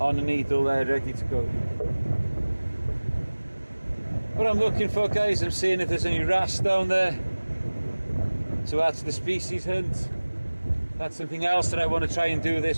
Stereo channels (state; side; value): inverted; both; correlation -1.00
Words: a needle there, ready to go. What I'm looking for, guys, I'm seeing if there's any wrasse down there. So that's the species hunt. That's something else that I want to try and do